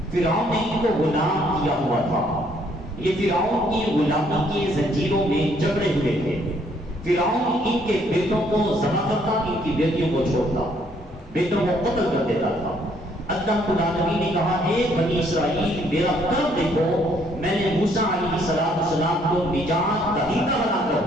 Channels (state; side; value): normal; both; correlation 0.66